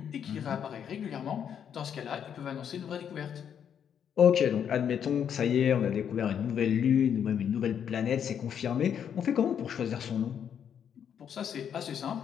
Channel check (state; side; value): quieter; right; 8.4 dB